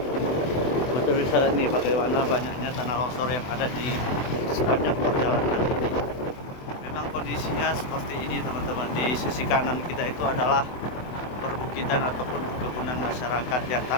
Betul bisa nih bagaimana banyaknya tanah longsor yang ada di sepanjang perjalanan ini. Memang kondisinya seperti ini teman-teman. Di sisi kanan kita itu adalah perbukitan ataupun perkebunan masyarakat ya.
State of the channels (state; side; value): late; right; 24 ms